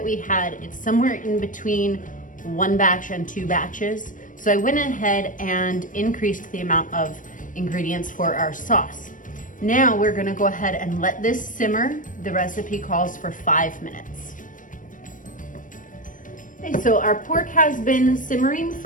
we had. It's somewhere in between 1 batch and 2 batches. So I went ahead and increased the amount of ingredients for our sauce. Now we're gonna go ahead and let this simmer. The recipe calls for 5 minutes. Okay, so our pork has been simmering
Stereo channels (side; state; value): right; late; 0.38 ms